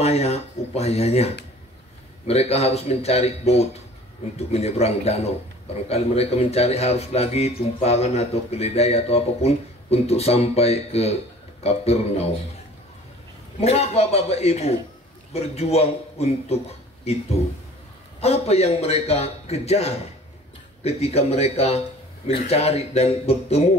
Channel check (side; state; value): both; normal; correlation 0.47